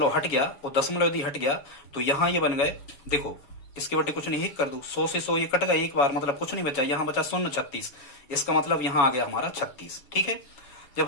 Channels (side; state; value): right; late; 7.1 ms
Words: हट गया, और दशमलव यदि हट गया तो यहाँ ये बन गए, देखो इसके बटे कुछ नहीं, 1 कर दो, 100 से 100 ये कट गया एक बार, मतलब कुछ नहीं बचा, यहाँ बचा 0.36, इसका मतलब यहाँ आ गया हमारा 36। ठीक है,